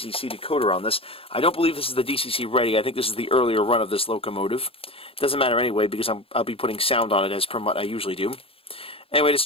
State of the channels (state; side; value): late; right; 0.27 ms